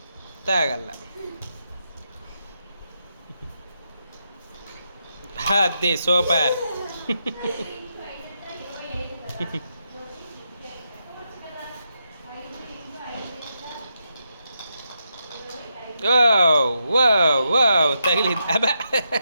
తాగల. అది సూపర్. తగిలింది. అబ్బా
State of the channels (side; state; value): both; inverted; correlation -0.83